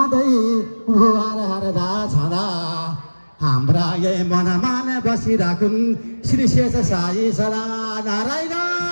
भुवार हरदा छँदा हाम्रा यही मनमान बसिराखुन् श्री शेष साई सदा नारायण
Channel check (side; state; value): both; inverted; correlation -1.00